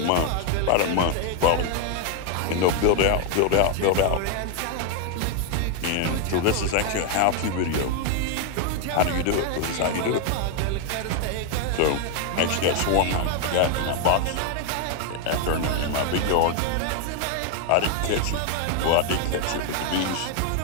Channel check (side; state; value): both; different; correlation 0.01